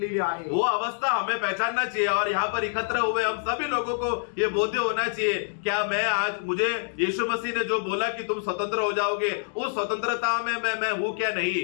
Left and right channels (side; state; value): right; silent; digital silence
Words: आहे। वो अवस्था हमें पहचानना चाहिए और यहाँ पर एकत्र हुए हम सभी लोगों को ये बोध्य होना चाहिए, क्या मैं आज, मुझे यीशु मसीह ने जो बोला कि तुम स्वतंत्र हो जाओगे, उस स्वतंत्रता में मैं हूं क्या